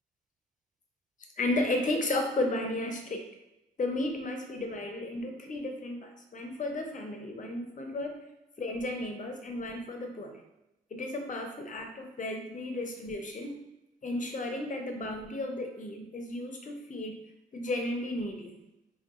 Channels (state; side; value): normal; both; correlation 0.51